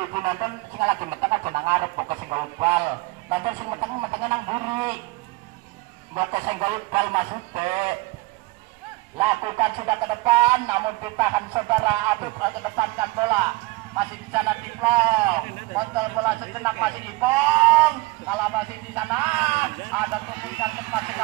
nonton sing lagi meteng aja nang ngarep kok sing bal. Nonton sing meteng nang mburi. Mbok sing bal maksudnya. Lakukan sudah ke depan, namun ditahan saudara Habib ke depankan bola. Masih di sana Diplong, kontrol bola sejenak masih Ipong. Kalau masih di sana ada tumpukan cepat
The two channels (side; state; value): left; quieter; 22.7 dB